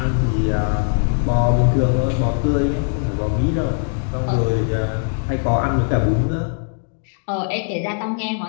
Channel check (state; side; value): silent; right; digital silence